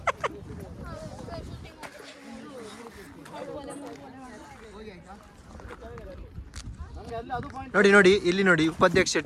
ನೋಡಿ ಇಲ್ಲಿ ನೋಡಿ, ಉಪಾಧ್ಯಕ್ಷ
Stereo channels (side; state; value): both; identical; correlation 1.00